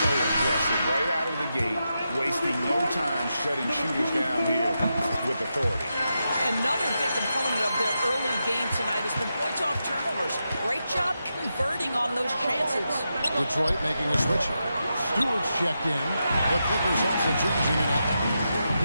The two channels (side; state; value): both; inverted; correlation -0.87